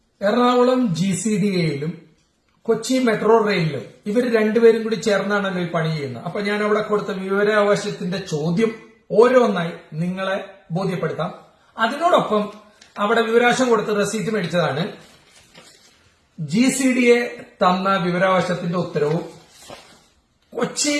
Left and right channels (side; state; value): both; identical; correlation 1.00